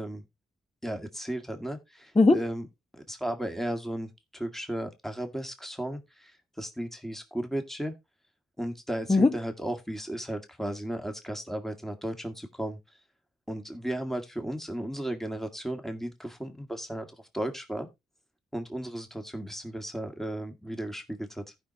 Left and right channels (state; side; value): normal; both; correlation 0.91